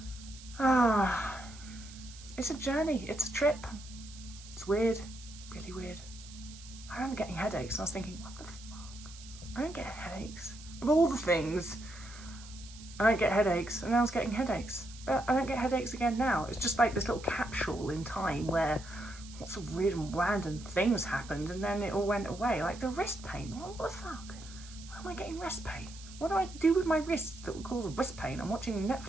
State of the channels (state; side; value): noise; right; hiss, 17 dB below the sound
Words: it's a journey, it's a trip. It's weird, really weird. I remember getting headaches and I was thinking, what the fuck? I don't get headaches. Of all the things, I don't get headaches, and I was getting headaches. But I don't get headaches again now. It's just like this little capsule in time where lots of weird and random things happened and then it all went away. Like the wrist pain. What the fuck? Why am I getting wrist pain? What do I do with my wrists that would cause wrist pain? I'm watching